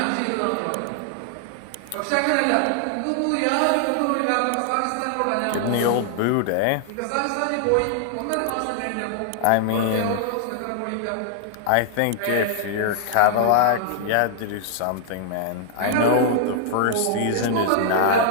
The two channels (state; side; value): different; both; correlation -0.01